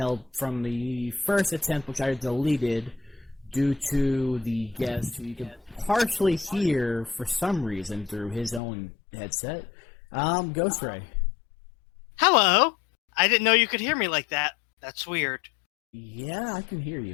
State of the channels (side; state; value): right; drops out; at 8.6 s